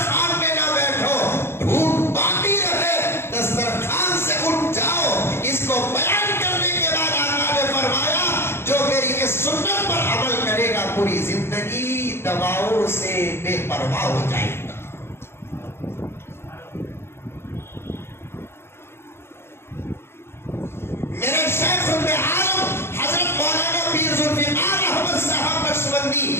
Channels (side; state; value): right; late; 0.12 ms